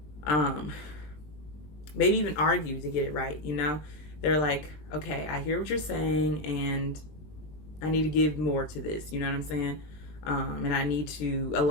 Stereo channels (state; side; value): late; right; 20 ms